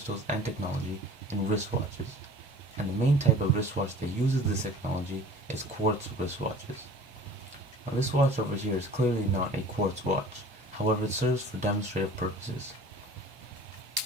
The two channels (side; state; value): both; normal; correlation 0.44